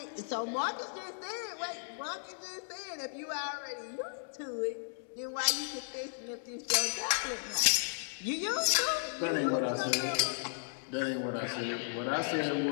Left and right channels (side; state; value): right; silent; digital silence